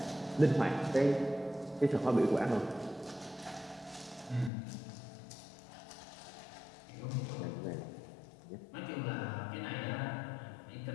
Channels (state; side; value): drops out; right; at 4.5 s